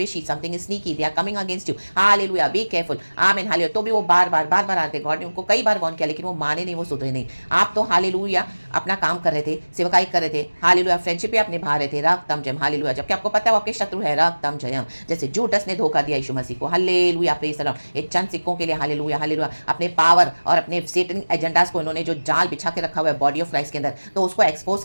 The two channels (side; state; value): both; inverted; correlation -1.00